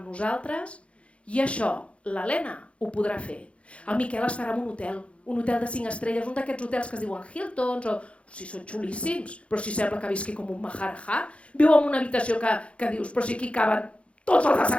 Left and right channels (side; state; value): right; late; 0.061 ms